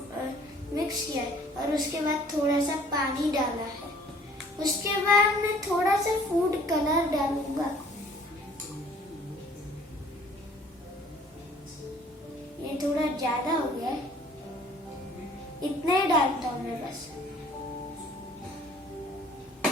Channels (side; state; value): both; normal; correlation 0.55